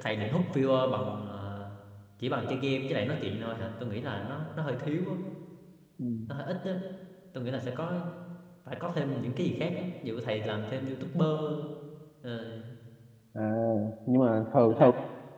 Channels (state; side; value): identical; both; correlation 1.00